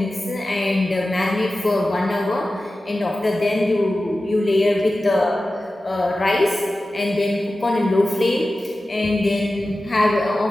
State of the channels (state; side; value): normal; both; correlation 0.95